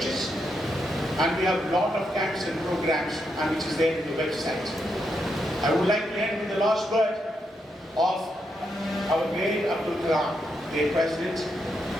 And we have a lot of camps and programs, and which is there in the website. I would like to end with the last word of our great Abdul Kalam, the president.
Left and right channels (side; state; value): both; normal; correlation 0.81